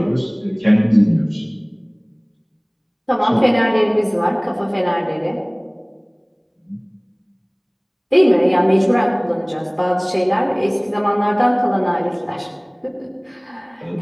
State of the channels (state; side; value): identical; both; correlation 1.00